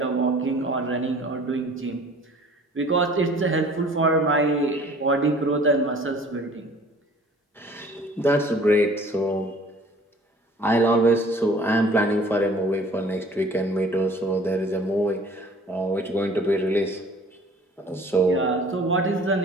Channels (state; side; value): normal; both; correlation 0.50